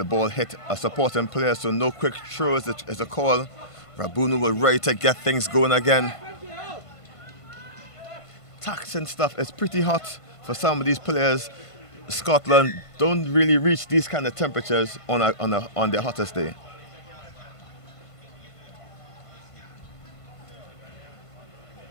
ball hit a supporting player, so no quick throw is a call. Rabunu was ready to get things going again. Taxing stuff is pretty hot for some of these players. Scotland don't really reach these kind of temperatures on their hottest day.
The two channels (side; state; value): right; late; 1.5 ms